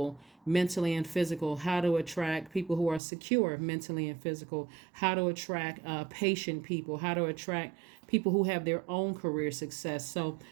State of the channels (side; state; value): left; drops out; at 3.0 s